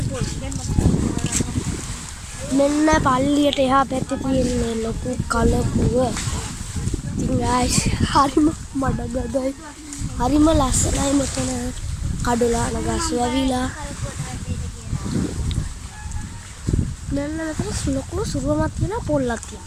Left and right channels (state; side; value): identical; both; correlation 1.00